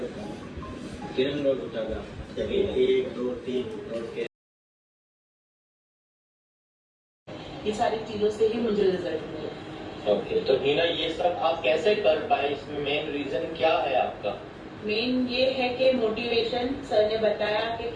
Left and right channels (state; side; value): identical; both; correlation 1.00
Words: किरण रोड उठागा चलिए 1 2 3 और के ये सारी चीजों से ही मुझे रिजल्ट मिले। ओके तो हीना ये सब आप कैसे कर पाए इसमें मेन रीजन क्या है आपका मेन ये है कि मोटिवेशन सर ने बताया कि